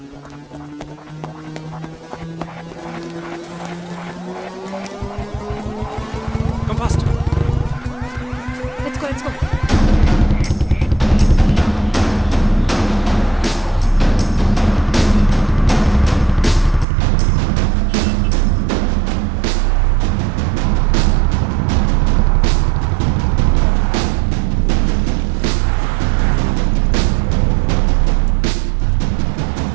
Come fast. Let's go, let's go.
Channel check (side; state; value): left; drops out; at 16.9 s